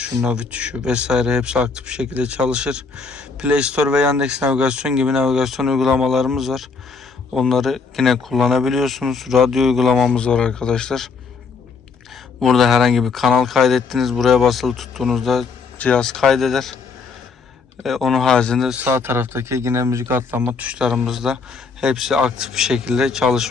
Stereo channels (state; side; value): quieter; right; 4.8 dB